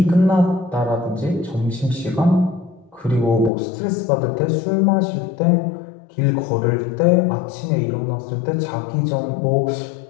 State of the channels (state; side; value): drops out; right; at 3.5 s